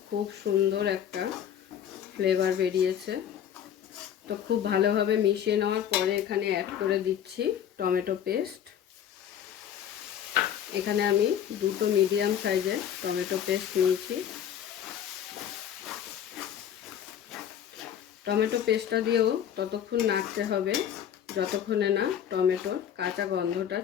খুব সুন্দর একটা ফ্লেভার বেরিয়েছে। তো খুব ভালোভাবে মিশিয়ে নেওয়ার পরে এখানে অ্যাড করে দিচ্ছি টমেটো পেস্ট। এখানে আমি 2টো মিডিয়াম সাইজের টমেটো পেস্ট নিয়েছি। টমেটো পেস্টটা দিয়েও ততক্ষণ নাড়তে হবে যতক্ষণে না টমেটোর কাঁচা গন্ধটা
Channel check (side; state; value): right; quieter; 9.5 dB